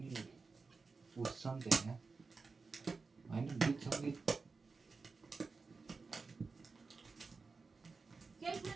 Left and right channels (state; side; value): quieter; left; 4.4 dB